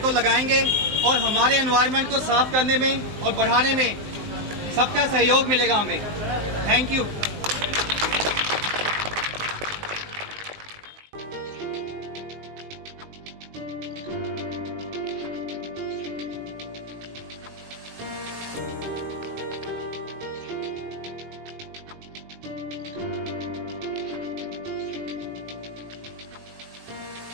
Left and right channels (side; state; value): left; late; 19 ms